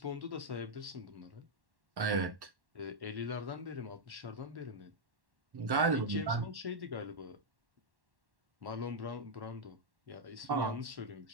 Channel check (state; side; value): late; left; 1.1 ms